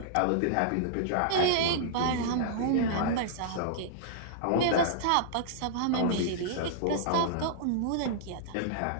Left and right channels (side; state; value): both; different; correlation -0.02